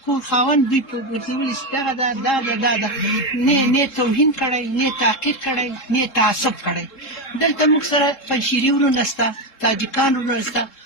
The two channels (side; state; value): right; late; 3.7 ms